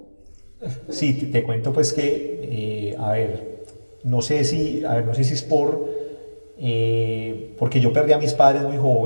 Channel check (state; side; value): inverted; both; correlation -1.00